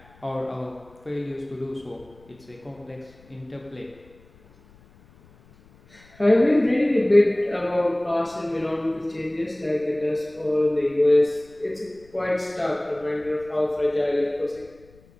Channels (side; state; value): left; noise; rumble, 27 dB below the sound